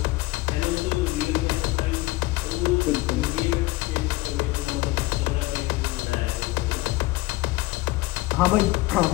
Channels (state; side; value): quieter; right; 20.0 dB